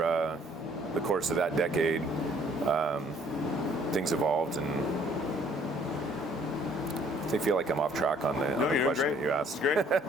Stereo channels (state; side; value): normal; both; correlation 0.60